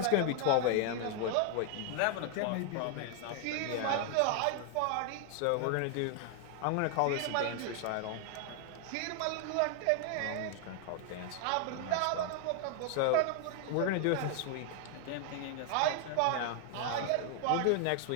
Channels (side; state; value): both; different; correlation 0.00